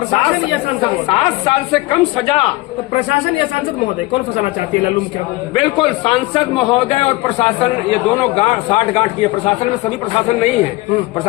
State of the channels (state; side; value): quieter; right; 20.5 dB